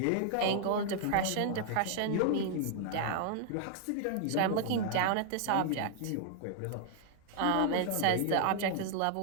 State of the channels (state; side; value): different; both; correlation -0.01